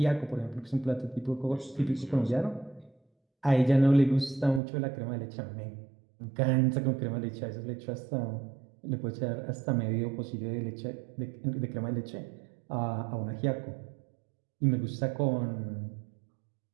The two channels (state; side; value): drops out; left; at 4.6 s